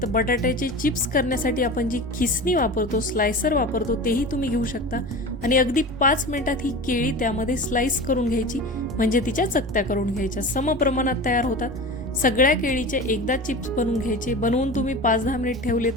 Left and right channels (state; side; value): normal; both; correlation 0.32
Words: तर बटाट्याचे चिप्स करण्यासाठी आपण जी खिसणी वापरतो, स्लायसर वापरतो, तेही तुम्ही घेऊ शकता आणि अगदी 5 मिनिटात ही केळी त्यामध्ये स्लाइस करून घ्यायची, म्हणजे तिच्या चकत्या करून घ्यायच्या. सम प्रमाणात तयार होतात. सगळ्या केळीचे एकदा चिप्स बनवून घ्यायचे. बनवून तुम्ही 5-10 मिनिट ठेवले